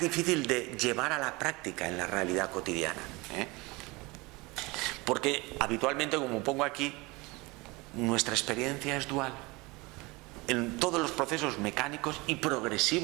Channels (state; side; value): quieter; left; 24.2 dB